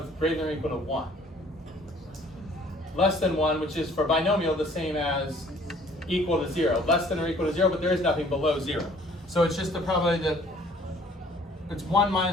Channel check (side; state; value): both; normal; correlation 0.56